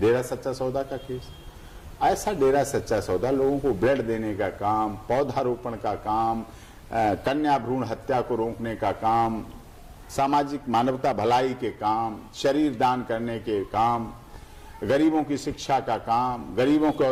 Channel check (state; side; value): identical; both; correlation 1.00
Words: सच्चा सौदा का केस। ऐसा डेरा सच्चा सौदा लोगों को ब्लड देने का काम, पौधारोपण का काम, कन्या भ्रूण हत्या को रोकने का काम, सामाजिक मानवता भलाई के काम, शरीर दान करने के काम, गरीबों की शिक्षा का काम, गरीबों के